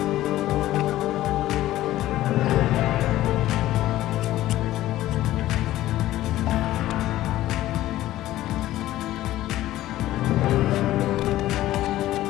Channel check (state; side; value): quieter; right; 14.9 dB